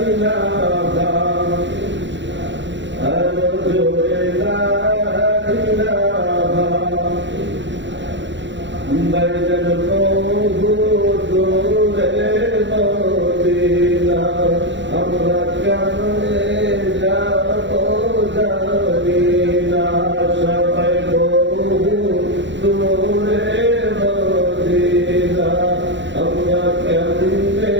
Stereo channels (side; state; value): left; late; 0.53 ms